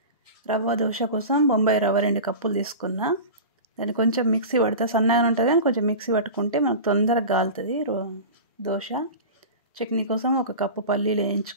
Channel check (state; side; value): inverted; both; correlation -0.31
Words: రవ్వ దోశ కోసం బొంబాయి రవ్వ 2 కప్పులు తీసుకున్నా. దాన్ని కొంచెం మిక్సీ పడితే సన్నగా ఉంటుంది, కానీ కొంచెం మిక్సీ పట్టుకుంటే మనకు తొందరగా కాలుతుంది దోశ. చట్నీ కోసం 1 కప్పు పల్లీలు